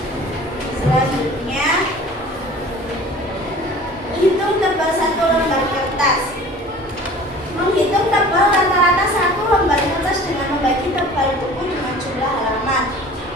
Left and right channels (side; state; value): both; normal; correlation 0.44